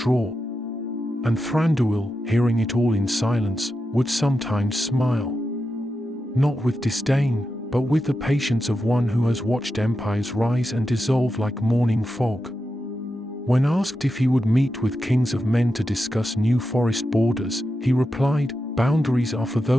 And Thranduil, hearing it all in silence, would sometimes smile. Not with disdain, but with the patience of one who has watched empires rise and dissolve like morning fog. When asked if he would meet with kings of men to discuss new forest borders, he replied, "Boundaries are for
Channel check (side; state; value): both; normal; correlation 0.89